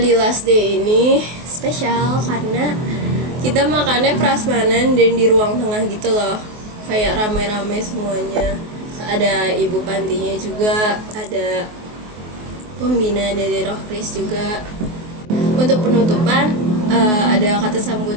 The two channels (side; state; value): left; late; 24 ms